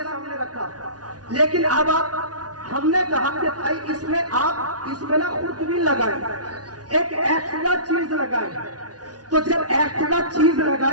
سامنے رکھا، لیکن اب ہم نے کہا کہ بھائی اس میں آپ اس میں نا خود بھی لگائیں، ایک ایکسٹرا چیز لگائیں. تو جب ایکسٹرا چیز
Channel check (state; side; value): late; left; 0.69 ms